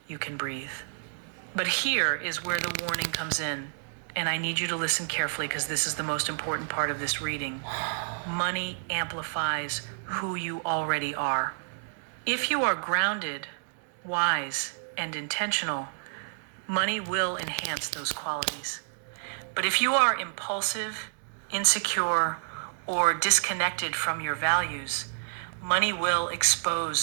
you can breathe. But here is where the warning comes in, and I need you to listen carefully because this is the most important part of this reading. Money amplifies who you already are. If you are grounded, wise, and intentional, money will enhance those qualities. But if you are impulsive, insecure, or disconnected from your values, money will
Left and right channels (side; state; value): left; silent; digital silence